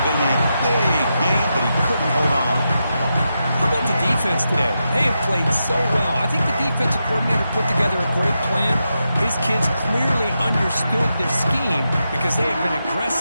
been a big game, but he couldn't hold on. How about the defense today? They have played so well. I think the defensive coordinator put together a great plan. His kids clearly understood their scheme because they have been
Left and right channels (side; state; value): both; inverted; correlation -0.87